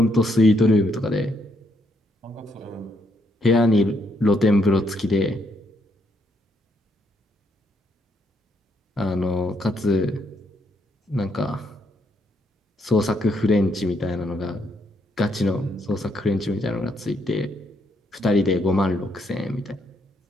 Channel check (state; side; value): normal; both; correlation 0.74